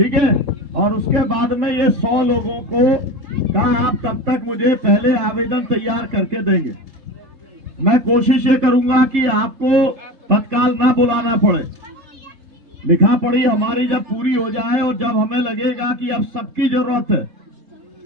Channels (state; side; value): late; left; 3.7 ms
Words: है। और उसके बाद में ये 100 लोगों को कहा आप कब तक मुझे पहले आवेदन तैयार करके देंगे। मैं कोशिश ये करूंगा कि आपको तत्काल ना बुलाना पड़े, लिखा पढ़ी हमारी जब पूरी हो जाए और जब हमें लगेगा कि अब सबकी जरूरत